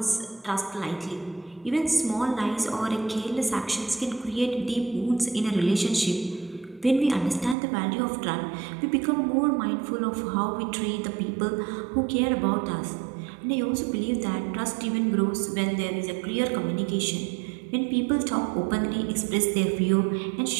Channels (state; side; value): drops out; left; at 7.6 s